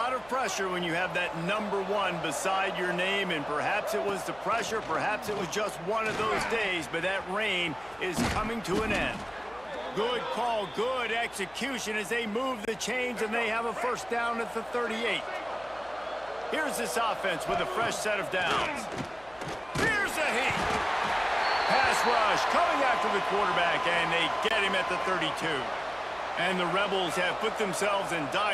of pressure when you have that number 1 beside your name, and perhaps it was the pressure, perhaps it was just one of those days, but that reign is coming to an end. Good call, good execution as they move the chains, and they have a first down at the 38. Here's this offense with a fresh set of downs. Here's a heat. Pass rush coming after the quarterback, and they get him at the 32. And the Rebels have put themselves in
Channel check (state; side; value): noise; left; hum, 26 dB below the sound